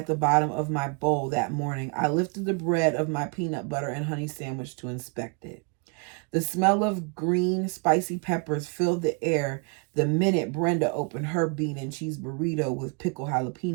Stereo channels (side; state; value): left; quieter; 34.5 dB